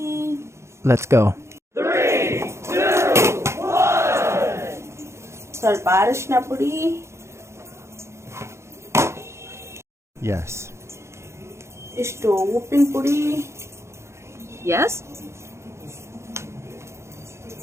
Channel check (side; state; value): left; late; 0.13 ms